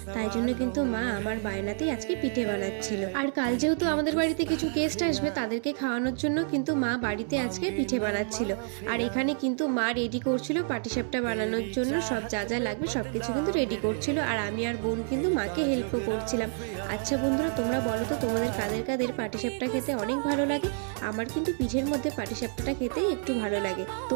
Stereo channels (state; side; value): silent; left; 59 dB below the other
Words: তাই জন্য কিন্তু মা আমার বায়নাতেই আজকে পিঠে বানাচ্ছিল। আর কাল যেহেতু আমাদের বাড়িতে কিছু গেস্ট আসবে, তাদেরকে খাওয়ানোর জন্য কিন্তু মা বাড়িতে আজকে পিঠে বানাচ্ছিল। আর এখানে কিন্তু মা রেডি করছিল পাটিসাপটা বানানোর জন্য, সব যা যা লাগবে সব কিছু কিন্তু রেডি করছিল, আর আমি আর বোন কিন্তু মাকে হেল্পও করছিলাম। আচ্ছা বন্ধুরা, তোমরা বলো তো তোমাদের কাদের কাদের পাটিসাপটা খেতে অনেক ভালো লাগে? আমার কিন্তু পিঠের মধ্যে পাটিসাপটাটা খেতেই একটু ভালো লাগে।